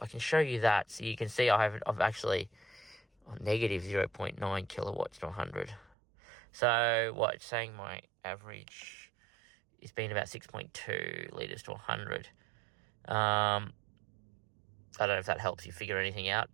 can show you that. So you can see I've actually negative 0.9 kilowatts to 100. So what it's saying, my average has been about 6.2 litres to 100. I don't know if that helps you figure anything out,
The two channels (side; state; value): left; drops out; at 6.0 s